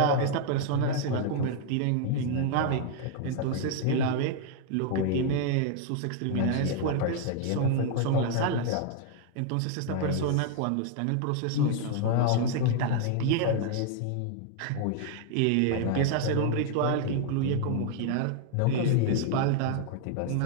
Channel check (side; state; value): both; different; correlation 0.00